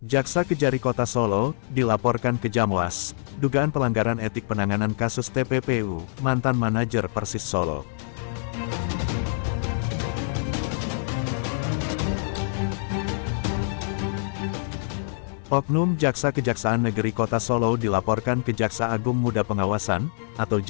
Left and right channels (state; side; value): silent; right; 62 dB below the other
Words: Jaksa Kejari Kota Solo dilaporkan ke Jamwas, dugaan pelanggaran etik penanganan kasus TPPU, mantan manajer Persis Solo. Oknum Jaksa Kejaksaan Negeri Kota Solo dilaporkan ke Jaksa Agung Muda Pengawasan, atau